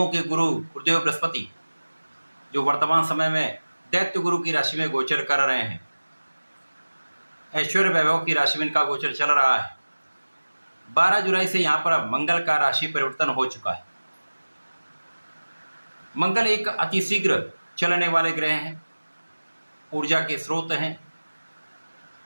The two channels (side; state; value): both; inverted; correlation -1.00